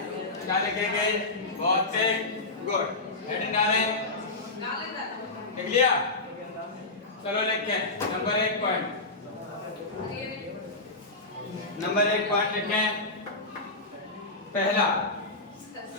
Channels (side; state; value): right; quieter; 3.2 dB